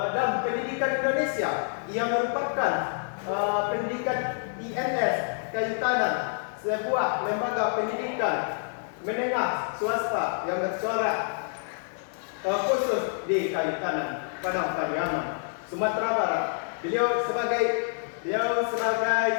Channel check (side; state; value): right; silent; digital silence